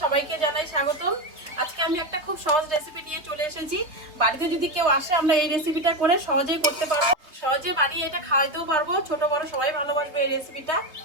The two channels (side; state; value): left; late; 3.5 ms